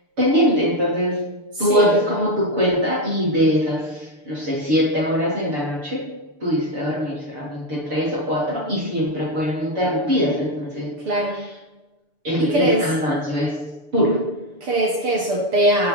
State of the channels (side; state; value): left; late; 6.8 ms